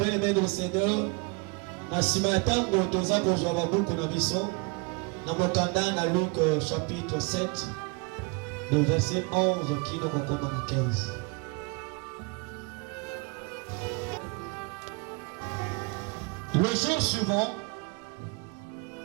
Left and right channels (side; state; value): left; quieter; 30.5 dB